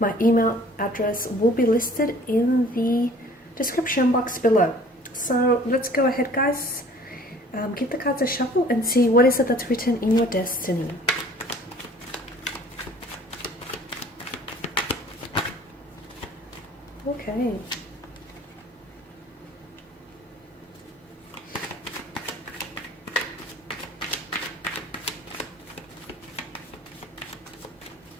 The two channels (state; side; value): normal; both; correlation 0.51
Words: email address will be listed in the description box below. So let's go ahead, guys. Give the cards a shuffle and see what is it that's written in your destiny. Okay.